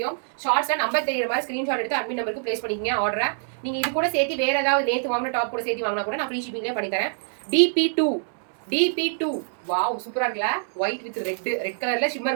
ஷார்ட்ஸ்ல நம்பர் தெரியுற மாதிரி ஸ்கிரீன்ஷாட் எடுத்து அட்மின் நம்பருக்கு பிளேஸ் பண்ணிக்கங்க ஆர்டரை. நீங்க இது கூட சேர்த்து வேற ஏதாவது நேத்து வாங்கின டாப் கூட சேர்த்து வாங்கினா கூட நான் ஃப்ரீ ஷிப்பிங்லேயே பண்ணி தரேன். DP2 வாவ் சூப்பரா இருக்குல்ல. ஒயிட் வித் ரெட் கலர்ல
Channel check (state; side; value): silent; left; 62 dB below the other